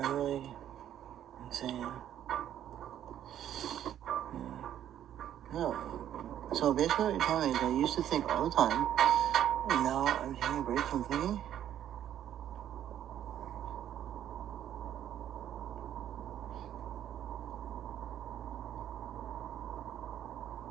are really insane. No. So basically what you're telling me is I used to think all the time, and now I'm taking a break from thinking.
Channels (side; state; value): left; quieter; 10.8 dB